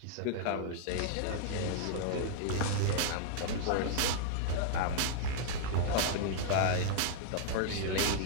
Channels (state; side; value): different; both; correlation -0.01